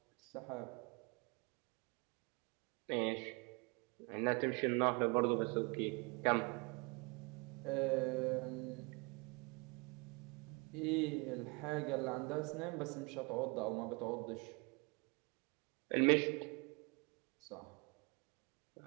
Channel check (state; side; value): quieter; left; 30.6 dB